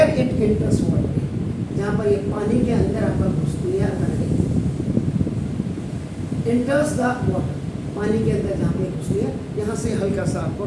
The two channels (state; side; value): identical; both; correlation 1.00